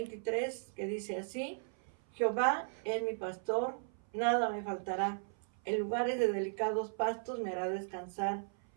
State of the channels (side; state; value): left; silent; 53 dB below the other